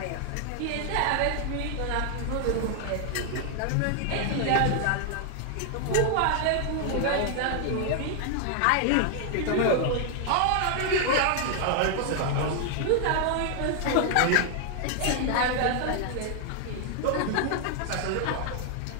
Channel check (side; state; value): both; different; correlation 0.00